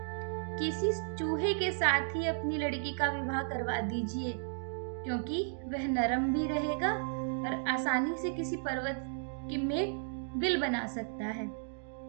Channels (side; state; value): left; silent; digital silence